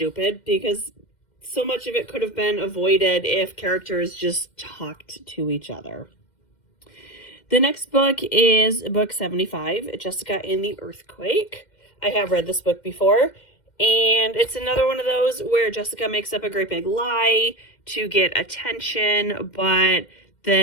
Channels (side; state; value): right; late; 2.1 ms